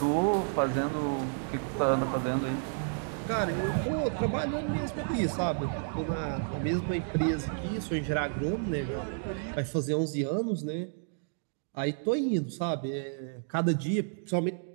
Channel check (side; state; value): left; silent; digital silence